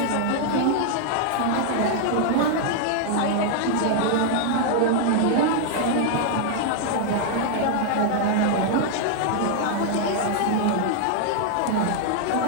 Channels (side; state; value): both; different; correlation 0.00